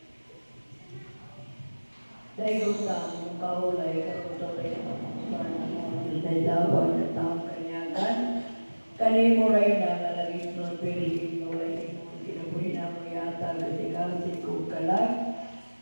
Dahil sa mong kaulay, karoon sa tayo ng dawan at taong kanyagan, kanimo rin na nalaging nun, piliin mo rin mo, kinabuhin na mo yata, kasi kung kalang,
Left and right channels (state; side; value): inverted; both; correlation -1.00